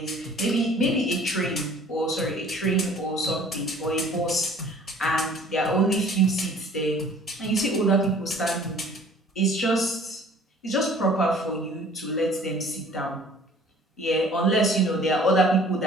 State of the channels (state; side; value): normal; both; correlation 0.52